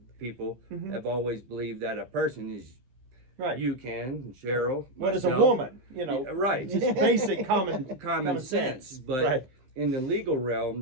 people have always believed that a person is right. you, Ken, Cheryl, What is a myself. woman? You know, Yeah, right. just basic common sense. But right. in the legal realm,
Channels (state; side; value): late; left; 15 ms